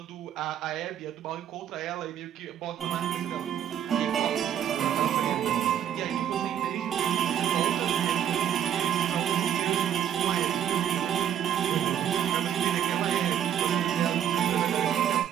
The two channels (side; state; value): left; quieter; 9.9 dB